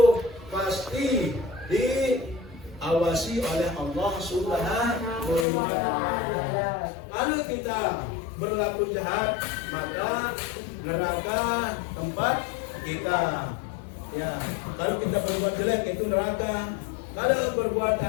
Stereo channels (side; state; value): right; drops out; at 5.5 s